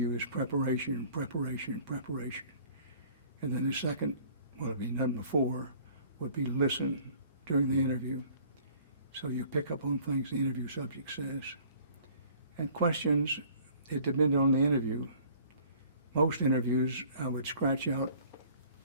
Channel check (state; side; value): inverted; both; correlation -0.54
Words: is preparation, preparation, preparation. And then the second, what would be done before, would be listen during the interview. So you pick up on things the interview subject says. And questions, it depends on the interview. Most interviews, I would scratch out